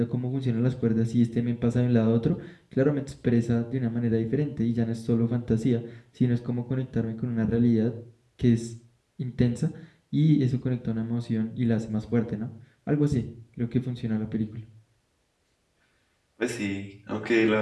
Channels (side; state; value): both; identical; correlation 1.00